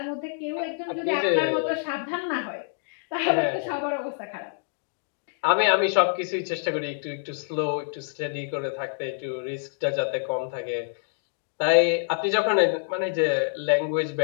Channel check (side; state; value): right; silent; digital silence